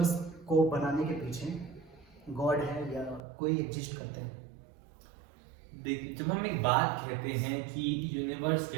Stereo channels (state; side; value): drops out; left; at 3.2 s